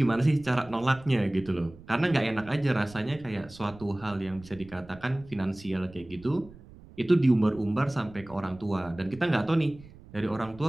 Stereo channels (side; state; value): right; noise; rumble, 21 dB below the sound